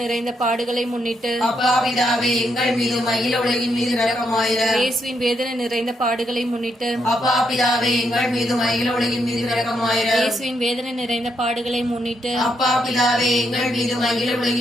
நிறைந்த பாடுகளை முன்னிட்டு அப்பா பிதாவே, எங்கள் மீதும் அகில உலகின் மீதும் இரக்கமாயிரம். இயேசுவின் வேதனை நிறைந்த பாடுகளை முன்னிட்டு அப்பா பிதாவே, எங்கள் மீதும் அகில உலகின் மீதும் இரக்கமாயிரம். இயேசுவின் வேதனை நிறைந்த பாடுகளை முன்னிட்டு அப்பா பிதாவே, எங்கள் மீதும் அகில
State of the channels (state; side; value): normal; both; correlation 0.78